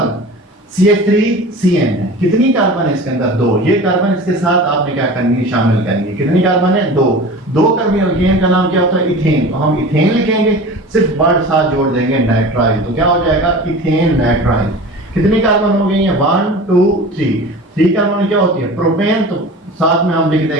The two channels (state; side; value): normal; both; correlation 0.36